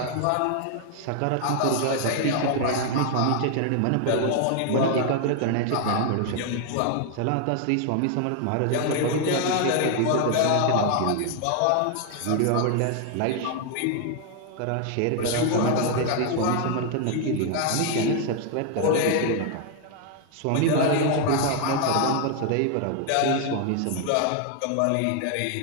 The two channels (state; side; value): different; both; correlation 0.00